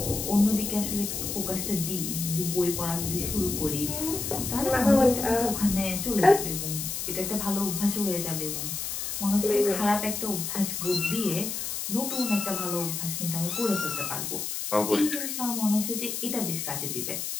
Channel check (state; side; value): noise; left; hiss, 4 dB below the sound